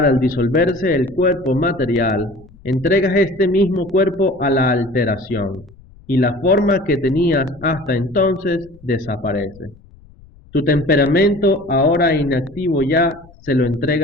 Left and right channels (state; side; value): noise; left; rumble, 25 dB below the sound